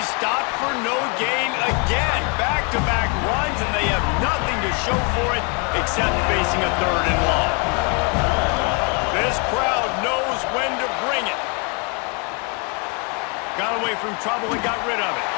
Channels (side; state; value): right; quieter; 34.9 dB